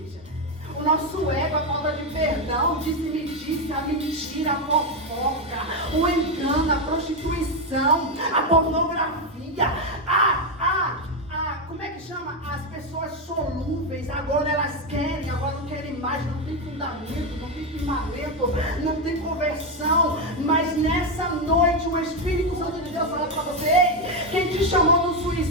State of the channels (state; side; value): normal; both; correlation 0.07